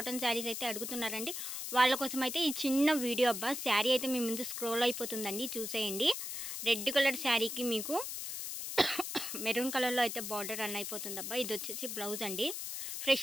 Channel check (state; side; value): noise; left; hiss, 5 dB below the sound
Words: శారీస్ అయితే అడుగుతున్నారండి. వాళ్ళ కోసం అయితే ఈ చిన్న వీడియో. అబ్బా శారీ అయితే మీ ముందు స్క్రోల్ అయిపోతుందండి, చూసేయండి. రెడ్ కలర్ శారీకి మీకు మెరూన్ కలర్లో అయితే బార్డర్ రన్ అయిపోతుంది. అబ్బా ఇది వచ్చేసి బ్లౌజ్ అండి.